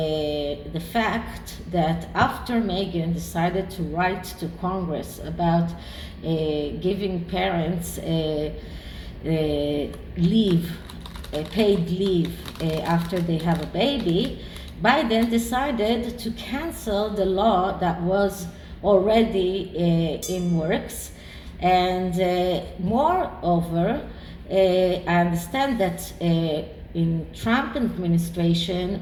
fact that after Meghan decided to write to Congress about giving parents leave, paid leave after they have a baby, Biden decided to cancel the law that was already in works. And moreover, I understand that in Trump administration,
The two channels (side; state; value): both; identical; correlation 1.00